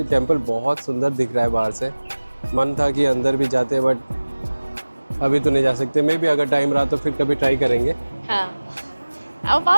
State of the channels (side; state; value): both; inverted; correlation -1.00